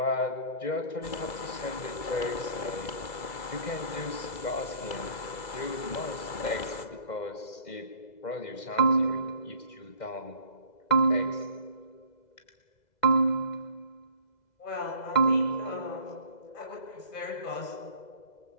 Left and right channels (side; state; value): right; late; 2.0 ms